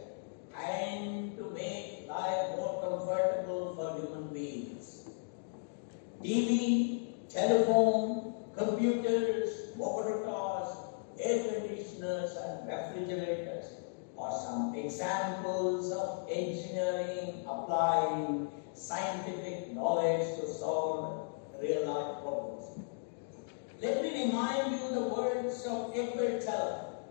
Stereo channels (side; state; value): right; silent; digital silence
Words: and to make life more comfortable for human beings. TV, telephone, computers, motor cars, air conditioners, and refrigerators are some examples of engineering applying scientific knowledge to solve real-life problems. Let me remind you the words of Edward Teller,